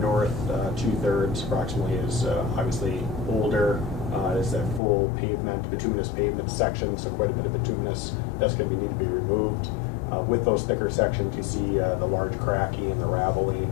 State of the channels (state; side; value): drops out; right; at 4.8 s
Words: 2/3 approximately is obviously older. It's that full pavement, bituminous pavement section, so quite a bit of bituminous that's going to need to be removed. With those thicker sections, you see the large cracking and the raveling,